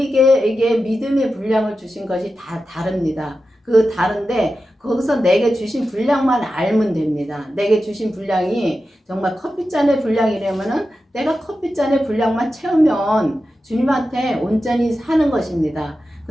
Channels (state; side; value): normal; both; correlation 0.91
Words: 믿음의 분량을 주신 것이 다 다릅니다. 그 다른데 거기서 내게 주신 분량만 알면 됩니다. 내게 주신 분량이 정말 커피잔의 분량이라면은 내가 커피잔의 분량만 채우면 주님한테 온전히 사는 것입니다.